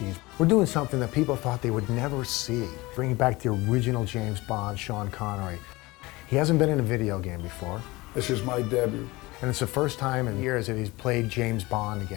We're doing something that people thought they would never see, bringing back the original James Bond, Sean Connery. He hasn't been in a video game before. This is my debut. And it's the first time in years that he's played James Bond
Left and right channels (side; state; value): right; quieter; 21.6 dB